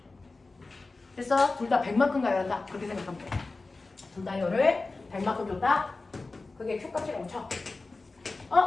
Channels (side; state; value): right; quieter; 3.6 dB